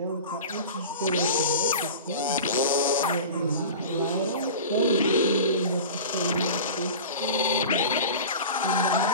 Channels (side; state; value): both; inverted; correlation -0.34